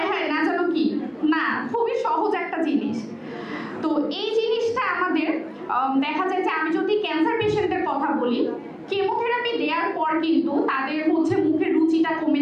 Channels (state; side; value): identical; both; correlation 1.00